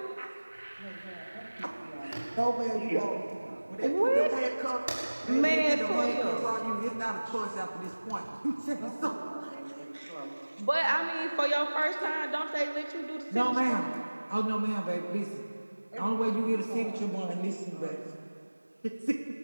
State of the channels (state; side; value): inverted; both; correlation -1.00